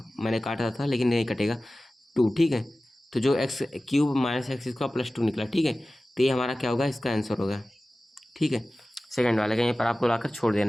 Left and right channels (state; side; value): normal; both; correlation 0.96